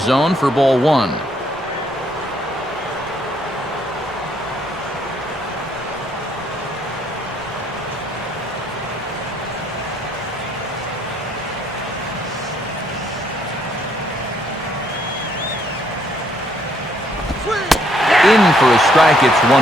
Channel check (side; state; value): both; normal; correlation 0.69